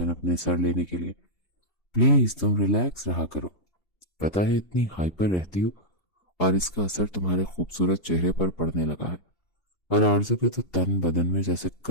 अपने सर लेने के लिए। प्लीज तुम रिलैक्स रहा करो। पता है इतनी हाइपर रहती हो और इसका असर तुम्हारे खूबसूरत चेहरे पर पड़ने लगा है। और आरजू के तो तन बदन में जैसे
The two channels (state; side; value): late; right; 2.8 ms